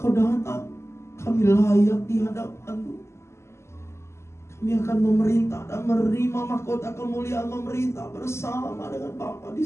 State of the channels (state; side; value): late; right; 0.13 ms